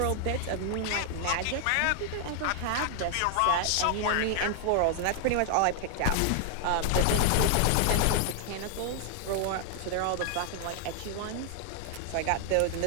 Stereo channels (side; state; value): both; different; correlation 0.00